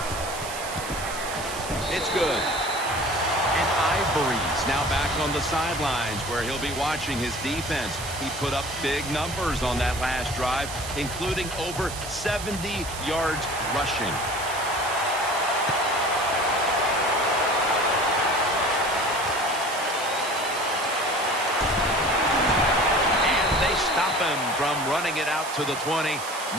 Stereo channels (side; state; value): right; noise; hiss, 9 dB below the sound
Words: It's good. And Ivory's now back on the sidelines where he'll be watching his defense. He put up big numbers on that last drive, including over 70 yards rushing. Stop him from running it out to the 20.